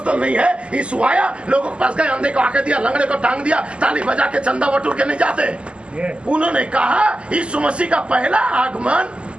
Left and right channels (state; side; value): late; left; 0.053 ms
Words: नहीं है। यीशु आया, लोगों के पास गए, अंधे को आके दिया, लंगड़े को टांग दिया, ताली बजा के चंदा बटोर के नहीं जाते। उन्होंने कहा यीशु मसीह का पहला आगमन